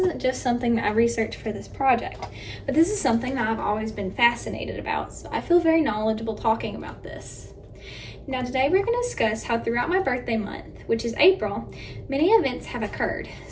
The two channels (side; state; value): both; identical; correlation 1.00